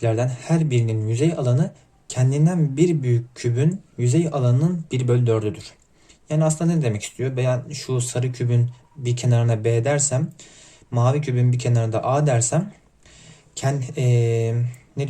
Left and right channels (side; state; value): both; identical; correlation 1.00